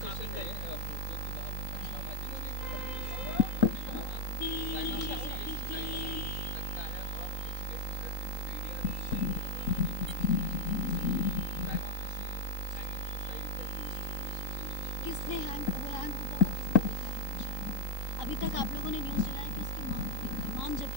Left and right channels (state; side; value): late; right; 3.8 ms